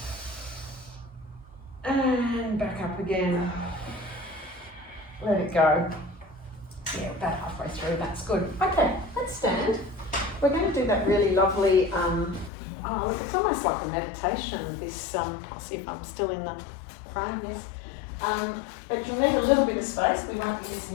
and back up again. Let it go. Yeah, about halfway through. That's good. Okay, let's stand. We're going to do that really lovely. Oh, look, it's almost like a meditation. This. I'll see if I'm still in the frame. Yes. But you'll need a little bit of space. We won't be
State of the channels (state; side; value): drops out; right; at 12.5 s